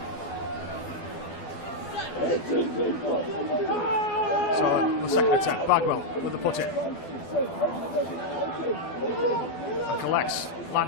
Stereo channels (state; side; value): late; right; 12 ms